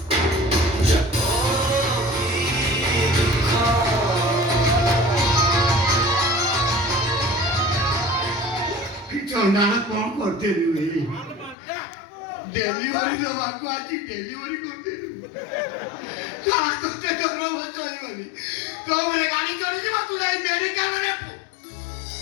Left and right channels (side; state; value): right; drops out; at 11.6 s